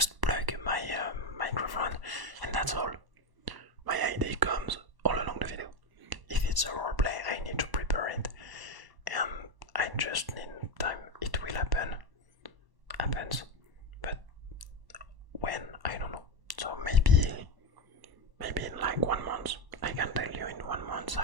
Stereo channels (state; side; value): late; left; 1.1 ms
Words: plug my microphone and that's all. My idea comes all along the video. If it's a roleplay I need to prepare it and I just need time. It will happens, but when, I don't know. So maybe in like 1 month, I can tell you in 1 month